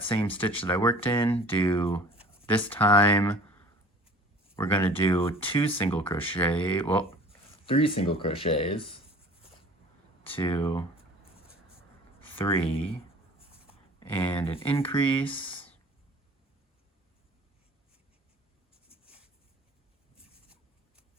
same stitch that I worked in. Do this time we're going to do 3 single crochets, 2, 3, and an increase,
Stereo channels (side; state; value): both; normal; correlation 0.47